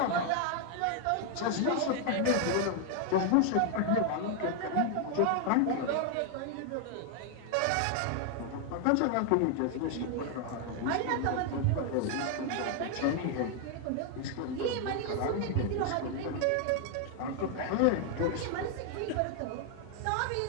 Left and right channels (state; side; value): different; both; correlation 0.00